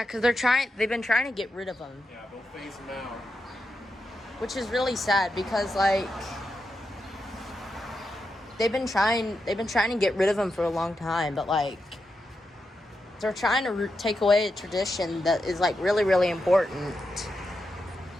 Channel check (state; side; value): normal; both; correlation 0.87